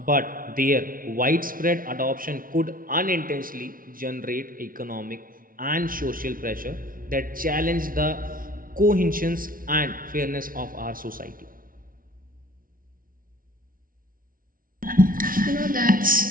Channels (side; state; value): left; late; 0.41 ms